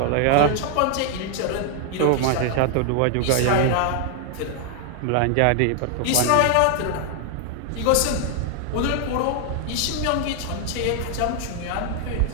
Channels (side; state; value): both; different; correlation 0.00